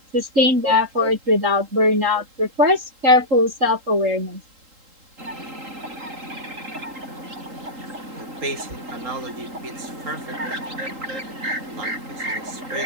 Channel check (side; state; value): left; late; 3.8 ms